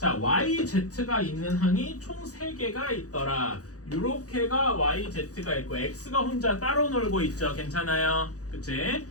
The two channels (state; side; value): late; right; 0.66 ms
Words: yz가 있는 항이 총 3개가 있더라. 요렇게가 yz가 있고 x가 혼자 따로 놀고 있죠. 괜찮아요? 그치?